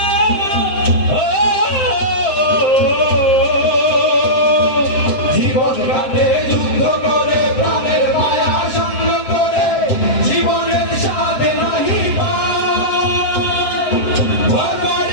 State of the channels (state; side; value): late; right; 7.7 ms